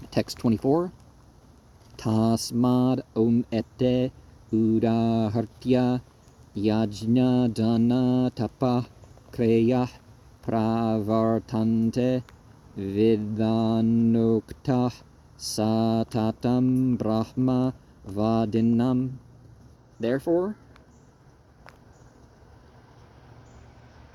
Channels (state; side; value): identical; both; correlation 1.00